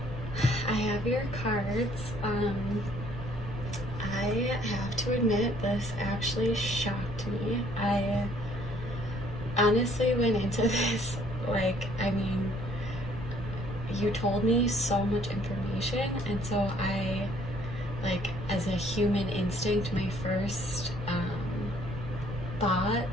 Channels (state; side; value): noise; right; rumble, 9 dB below the sound